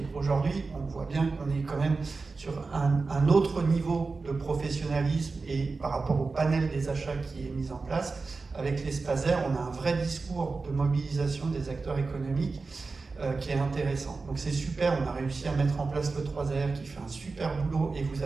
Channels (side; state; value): left; quieter; 4.1 dB